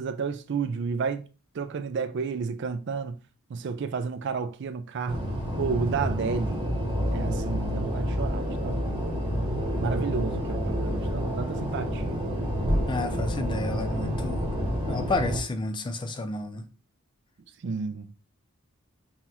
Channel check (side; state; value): both; normal; correlation 0.57